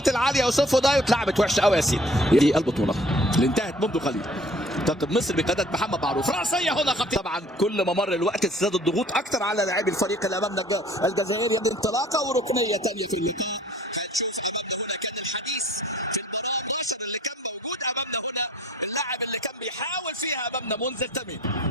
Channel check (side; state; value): both; normal; correlation 0.54